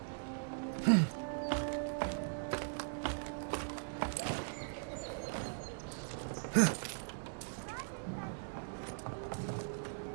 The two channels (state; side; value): silent; left; 51 dB below the other